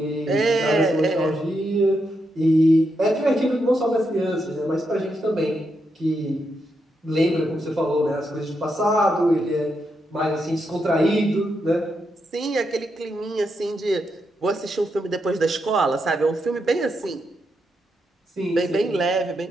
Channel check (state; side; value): normal; both; correlation 0.82